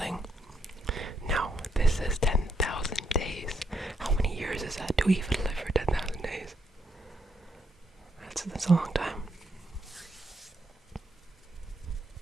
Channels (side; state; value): both; normal; correlation 0.76